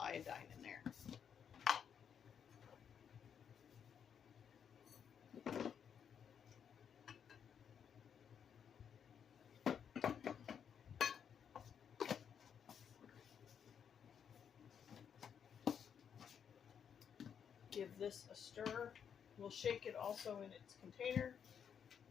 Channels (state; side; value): quieter; right; 7.8 dB